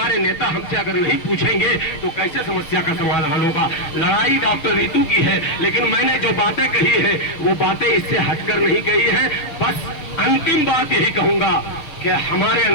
नेता हमसे अगर नहीं पूछेंगे तो कैसे समस्या का समाधान होगा। लड़ाई डॉक्टर ऋतु की है, लेकिन मैंने जो बातें कही है वो बातें इससे हटकर नहीं कही है। बस अंतिम बात यही कहूंगा कि हमारे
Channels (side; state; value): right; late; 6.5 ms